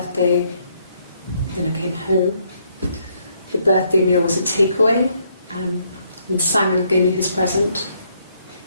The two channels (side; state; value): both; inverted; correlation -0.72